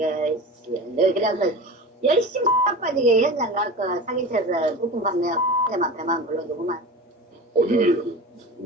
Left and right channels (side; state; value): both; normal; correlation 0.31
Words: 너 그래서 열심히 빠지게 현장 가서 사기쳐서 부품 판매 때만 배만 불러주고만. 우리는